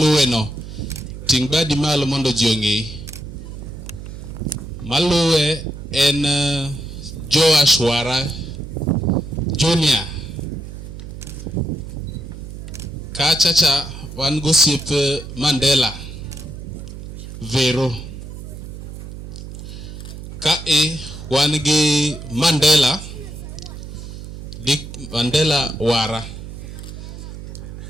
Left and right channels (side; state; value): right; noise; hum, 11 dB below the sound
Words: no ting badi malo mondo ji ong'e. Maluwe en Joash Wara Junior. Kachacha wan gosiep Mandela Vero. Kae wan gi Mandela Dick Mandela Wara.